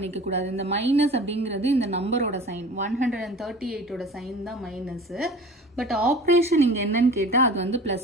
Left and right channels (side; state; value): both; normal; correlation 0.41